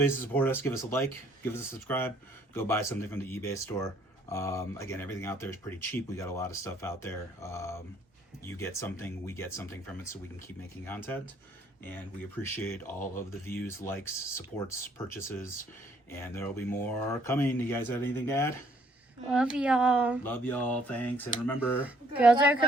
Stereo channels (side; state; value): both; normal; correlation 0.64